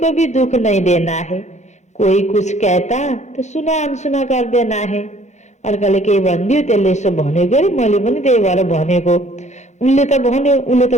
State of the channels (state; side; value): late; right; 0.33 ms